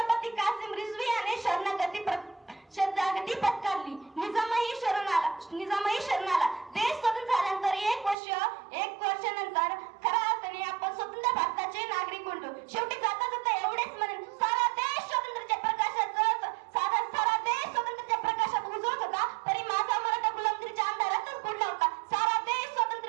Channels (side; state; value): left; drops out; at 8.2 s